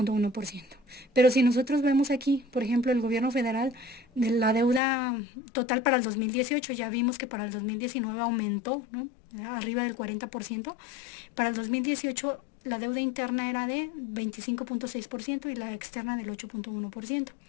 Pero si nosotros vemos aquí, por ejemplo, el gobierno federal, de la deuda total para el 2018, ya vimos que para el 2019 aumentó, ¿no? arriba del 40%. Para el 2018 la deuda interna era de 25.6% y la externa del 8.1%.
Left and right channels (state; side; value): drops out; right; at 4.8 s